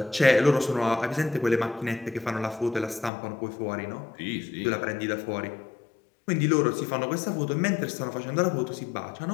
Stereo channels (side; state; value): right; drops out; at 3.1 s